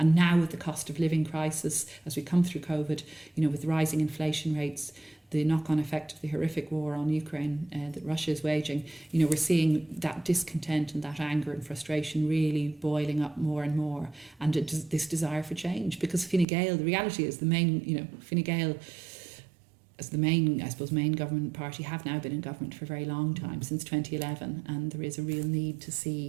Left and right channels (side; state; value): left; drops out; at 16.4 s